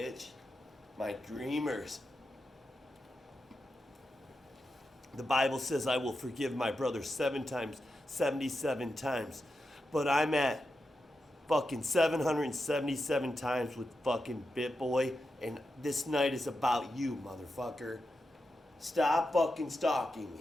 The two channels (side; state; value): both; normal; correlation 0.88